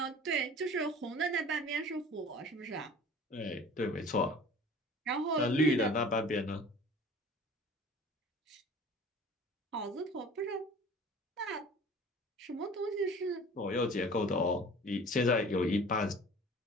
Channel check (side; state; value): both; normal; correlation 0.44